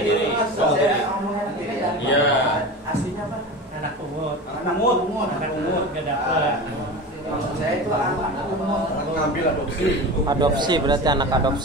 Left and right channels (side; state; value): both; normal; correlation 0.30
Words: Saya ngomongnya tiri dan Iya. aslinya apa? Anak umur. Anak umur. Anak umur gak dapet. Maksud saya itu anak umur. Ngambil adopsi. Adopsi berarti anak